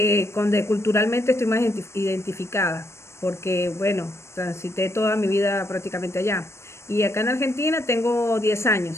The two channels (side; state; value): right; late; 0.13 ms